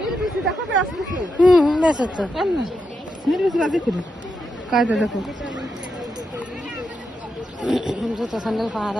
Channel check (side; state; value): both; normal; correlation 0.85